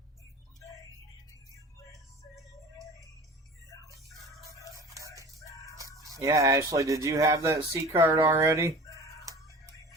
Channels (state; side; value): normal; both; correlation 0.40